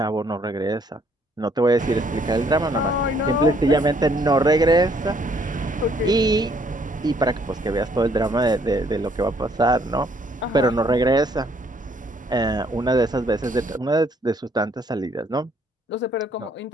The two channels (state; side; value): normal; both; correlation 0.66